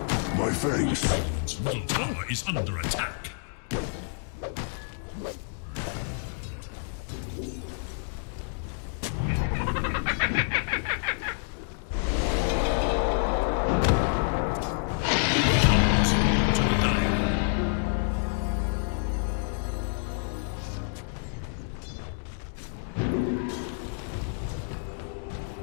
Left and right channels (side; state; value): right; silent; 59 dB below the other